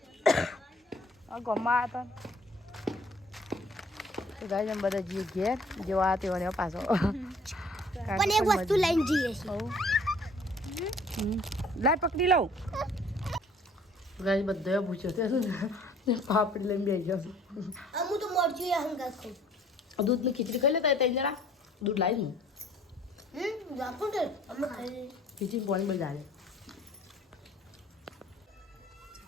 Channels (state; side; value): normal; both; correlation 0.56